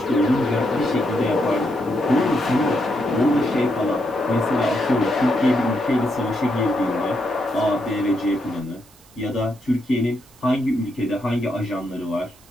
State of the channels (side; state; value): right; noise; hiss, 27 dB below the sound